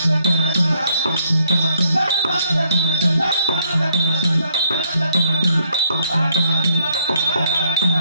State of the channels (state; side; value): inverted; both; correlation -0.70